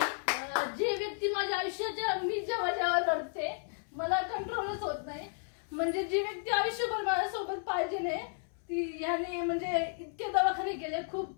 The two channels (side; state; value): right; silent; 56 dB below the other